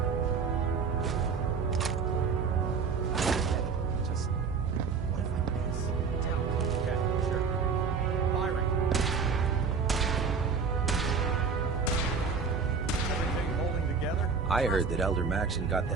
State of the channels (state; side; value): quieter; left; 5.4 dB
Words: Just... what if I miss? Don't. Okay, sure. Firing. Everything holding together? I heard that Elder Maxon got